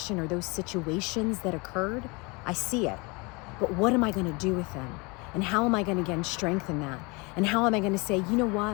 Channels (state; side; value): quieter; right; 27.8 dB